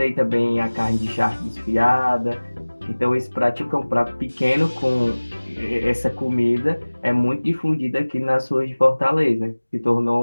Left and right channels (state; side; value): inverted; both; correlation -1.00